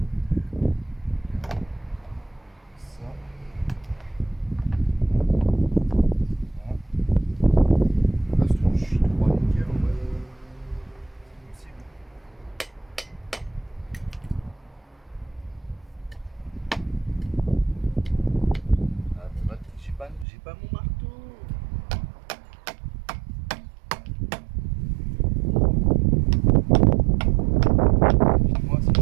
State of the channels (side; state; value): left; drops out; at 20.2 s